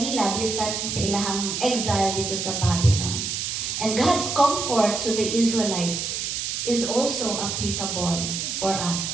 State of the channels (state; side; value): noise; right; hiss, 3 dB below the sound